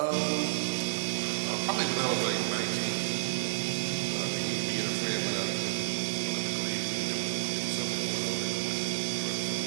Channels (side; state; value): left; silent; digital silence